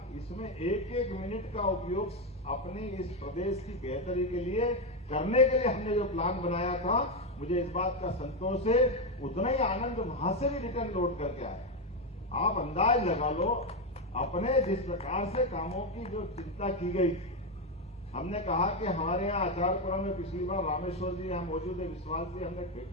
इसमें 1-1 मिनट का उपयोग अपने इस प्रदेश की बेहतरी के लिए करने के लिए हमने जो प्लान बनाया था, मुझे इस बात का संतोष है, उतना ही आनंद वहां से भी रिटर्न लौट करके आया। आप अंदाज लगा लो, अपने जिस प्रकार से कामों की जो चिंता की गई थी, हमने कहा कि हमारे यहाँ आचारपुरा में पिछली बार रामेश्वर जी यहाँ मौजूद है, विश्वास जी, हमने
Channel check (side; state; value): both; normal; correlation 0.08